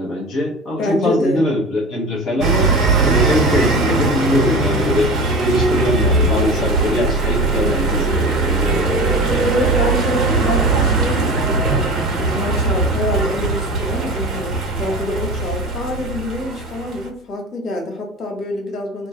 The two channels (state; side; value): normal; both; correlation 0.32